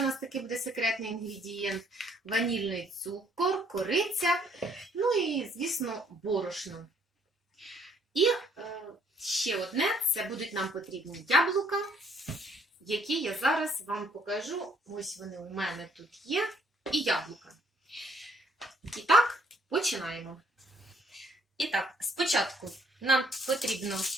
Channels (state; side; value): normal; both; correlation 0.65